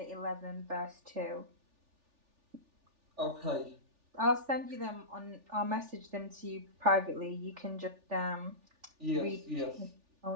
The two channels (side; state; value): left; late; 3.4 ms